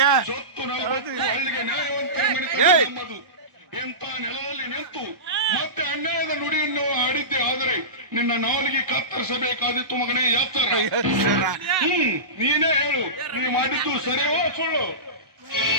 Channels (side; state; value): left; late; 1.0 ms